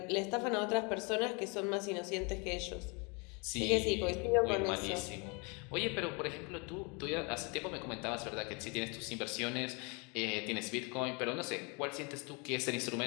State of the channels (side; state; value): right; quieter; 31.6 dB